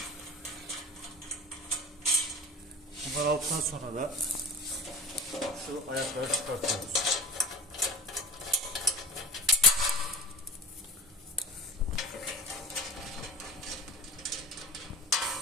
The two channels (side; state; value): both; normal; correlation 0.35